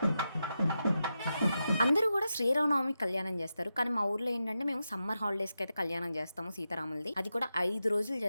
అందరూ కూడా శ్రీరామనవమి కళ్యాణం చేస్తారు. కానీ మా ఊర్లో ఏంటంటే మేము సమ్మర్ హాలిడేస్కి అయితే కళ్యాణం చేస్తాము సీతారాములది. అది కూడా 5 రోజులు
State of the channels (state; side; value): inverted; both; correlation -0.89